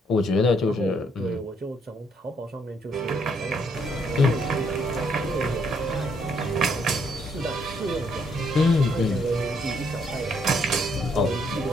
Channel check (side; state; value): both; normal; correlation 0.71